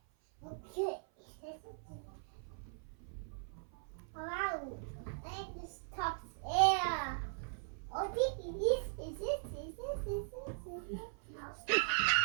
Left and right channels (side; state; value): left; silent; 51 dB below the other